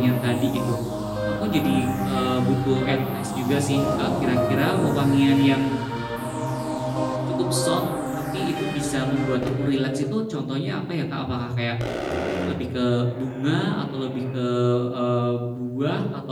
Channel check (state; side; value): identical; both; correlation 1.00